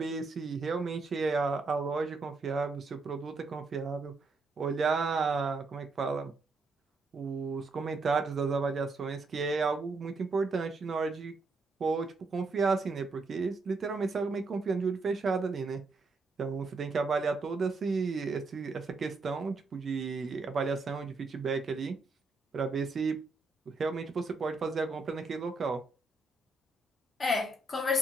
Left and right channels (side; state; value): left; quieter; 3.6 dB